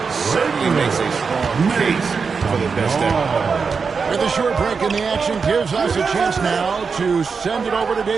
Certainly makes a strong case for the best ever. With a short break in the action gives us a chance now to send it over to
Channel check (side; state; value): left; quieter; 5.3 dB